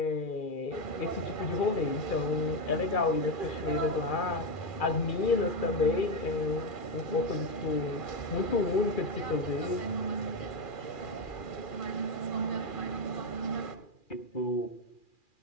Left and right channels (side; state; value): right; late; 2.4 ms